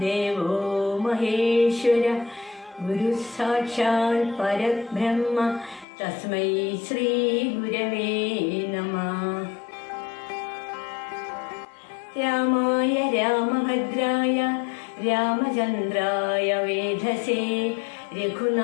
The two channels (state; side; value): drops out; right; at 5.9 s